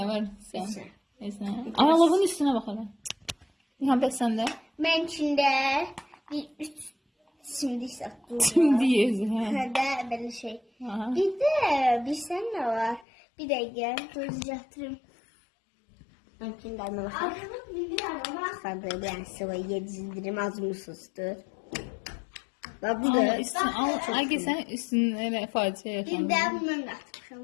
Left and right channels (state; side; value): drops out; right; at 13.1 s